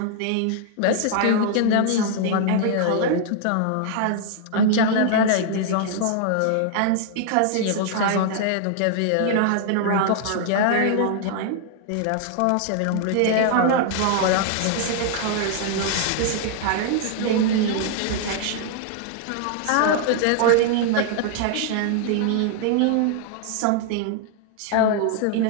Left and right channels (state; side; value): different; both; correlation 0.00